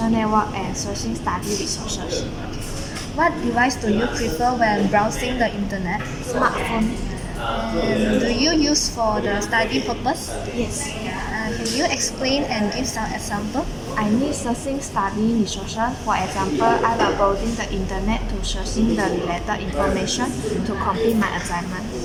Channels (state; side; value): identical; both; correlation 1.00